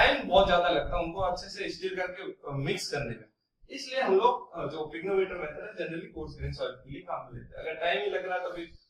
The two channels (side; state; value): both; identical; correlation 1.00